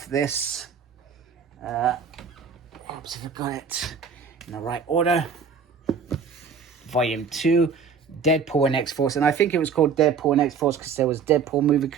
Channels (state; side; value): quieter; left; 6.0 dB